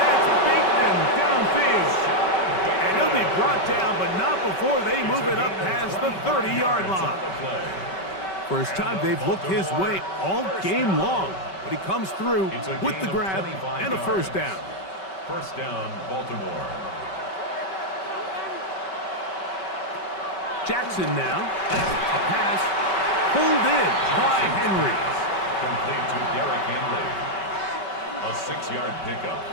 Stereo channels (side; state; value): right; late; 5.2 ms